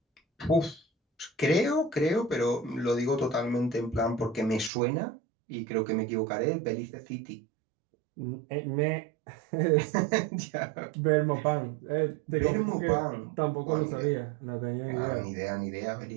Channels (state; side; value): drops out; left; at 4.7 s